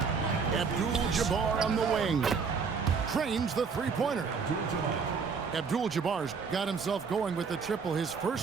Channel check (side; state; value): left; quieter; 5.5 dB